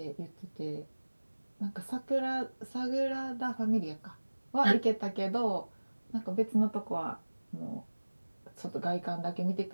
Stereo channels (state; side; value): inverted; both; correlation -1.00